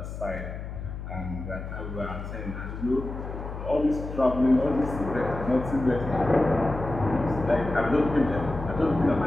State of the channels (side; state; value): left; noise; hum, 8 dB below the sound